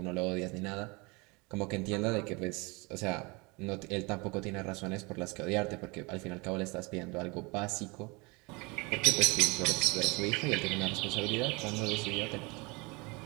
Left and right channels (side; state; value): left; quieter; 27.3 dB